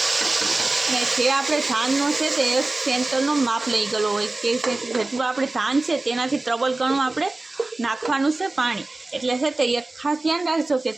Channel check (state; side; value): quieter; left; 3.1 dB